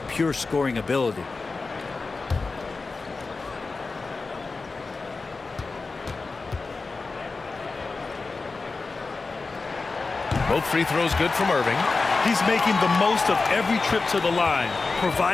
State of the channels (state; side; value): quieter; right; 4.0 dB